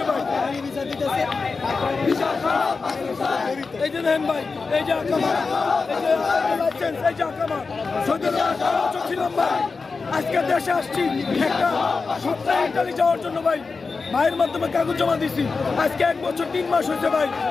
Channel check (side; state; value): right; quieter; 4.4 dB